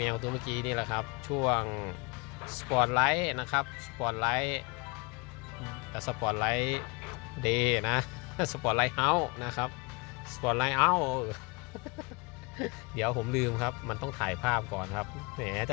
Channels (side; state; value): right; quieter; 28.5 dB